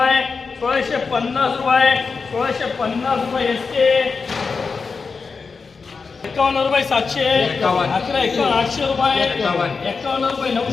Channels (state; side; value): quieter; right; 4.8 dB